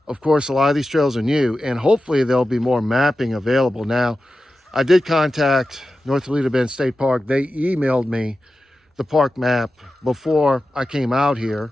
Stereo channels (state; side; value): normal; both; correlation 0.93